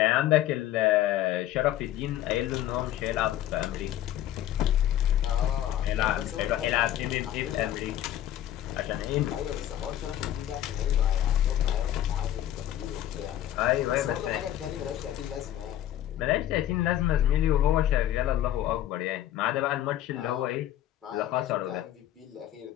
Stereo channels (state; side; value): quieter; right; 12.4 dB